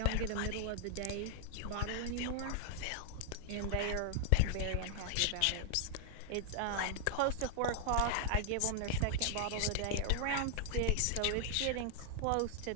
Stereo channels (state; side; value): different; both; correlation 0.00